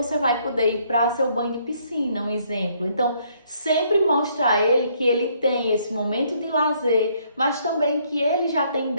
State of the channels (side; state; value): both; inverted; correlation -0.67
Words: vai poder ir para seu banho de piscina, um exemplo. Então, sempre mostra a ele que ele tem esse momento de lazer, mas também que ele já tem